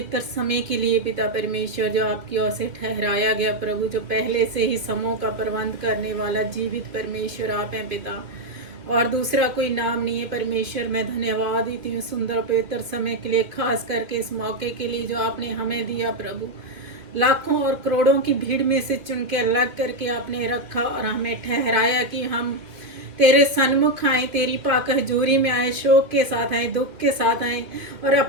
समय के लिए पिता परमेश्वर जो आपकी ओर से ठहराया गया प्रभु, जो पहले से ही समों का प्रबंध करने वाला जीवित परमेश्वर आप हैं पिता, और दूसरा कोई नाम नहीं है परमेश्वर। मैं धन्यवाद देती हूँ सुंदर पवित्र समय के लिए, खास करके इस मौके के लिए जो आपने हमें दिया प्रभु। लाखों और करोड़ों की भीड़ में से चुन के अलग करके आपने रखा और हमें ठहराया कि हम तेरे सन्मुख आए, तेरी पाक हजूरी में आए, शोक के साथ आए, दुख के साथ आए, और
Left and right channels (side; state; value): left; late; 2.5 ms